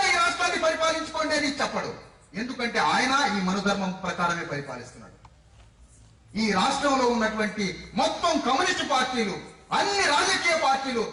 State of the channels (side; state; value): both; identical; correlation 1.00